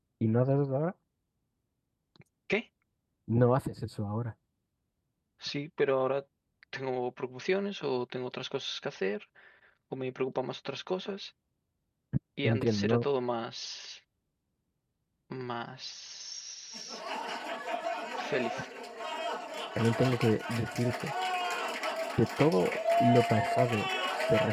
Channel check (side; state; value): both; identical; correlation 1.00